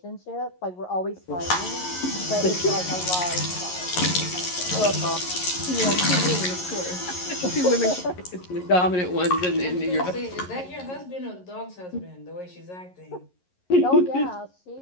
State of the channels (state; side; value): late; right; 11 ms